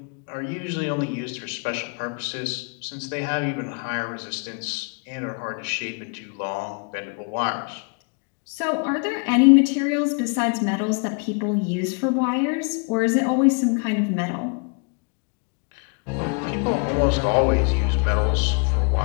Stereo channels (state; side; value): quieter; right; 36.3 dB